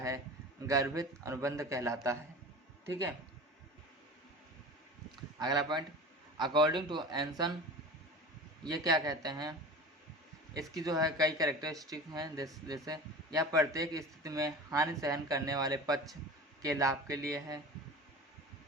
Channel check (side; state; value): both; normal; correlation 0.36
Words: गर्भित अनुबंध कहलाता है। ठीक है, अगला पॉइंट, अकॉर्डिंग टू एंसन, ये क्या कहते हैं? इसकी जो है कई कैरेक्टरिस्टिक हैं, जैसे यह प्रत्येक स्थिति में हानि सहन करने वाले पक्ष के लाभ के लिए है।